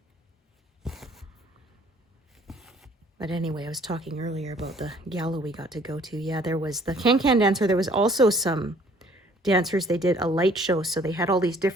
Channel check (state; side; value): normal; both; correlation 0.58